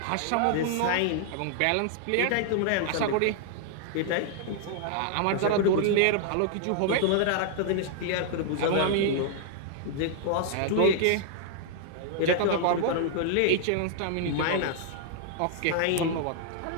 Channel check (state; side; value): different; both; correlation 0.00